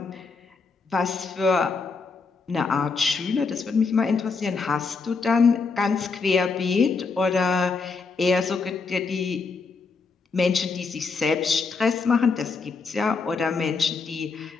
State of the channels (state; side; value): quieter; right; 4.6 dB